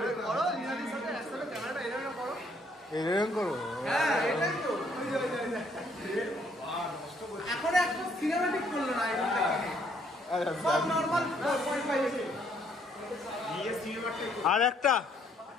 করো, লিনাদির সাথে একসাথে ক্যামেরাটা এরকম করো। এরকম করো? হ্যাঁ এটাই তো। এখন একটা সিনেম্যাটিক করলো না এখন থেকে। সব নরমাল 4.5 এসে। আর একটা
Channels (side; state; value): both; normal; correlation 0.67